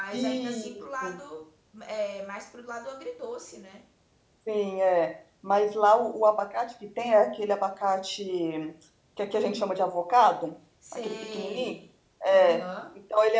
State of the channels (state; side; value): identical; both; correlation 1.00